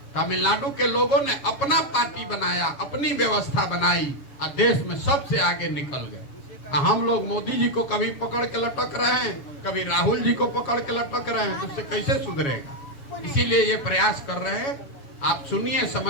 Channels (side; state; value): right; late; 7.2 ms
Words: तमिलनाडु के लोगों ने अपना पार्टी बनाया, अपनी व्यवस्था बनाई और देश में सबसे आगे निकल गए। हम लोग मोदी जी को कभी पकड़ के लटक रहे हैं, कभी राहुल जी को पकड़ के लटक रहे हैं, तो उससे कैसे सुधरेगा। इसीलिए ये प्रयास कर रहे हैं। आप सुनिए,